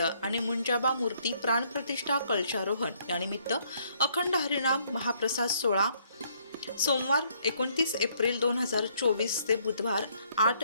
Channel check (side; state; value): both; inverted; correlation -0.67